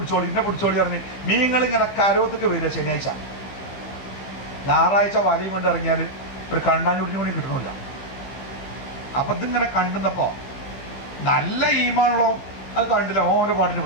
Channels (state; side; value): late; right; 15 ms